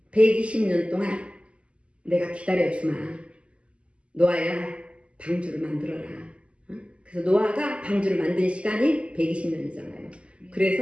120년 동안 내가 기다려주마, 노아야, 방주를 만들어라. 그래서 노아가 방주를 만든 시간이 120년이잖아요.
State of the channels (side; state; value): left; late; 0.057 ms